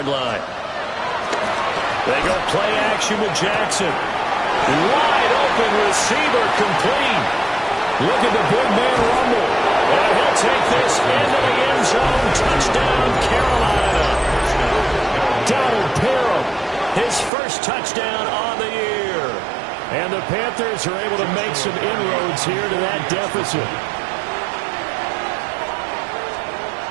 line. They go play action with Jackson. Wide open receiver, complete. Look at the big man rumble. And he'll take this into the end zone. Touchdown, Carolina. Donald Parham, his first touchdown on the year. And the Panthers are able to make some inroads here to that deficit.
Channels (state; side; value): drops out; left; at 17.3 s